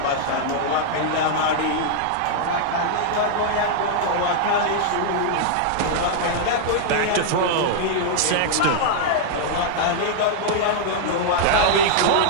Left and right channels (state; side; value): different; both; correlation -0.01